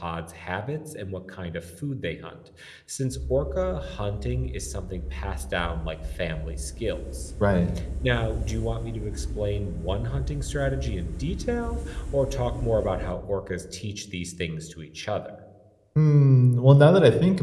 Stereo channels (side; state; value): both; identical; correlation 1.00